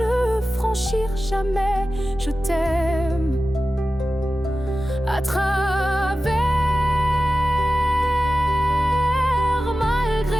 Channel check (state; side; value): normal; both; correlation 0.94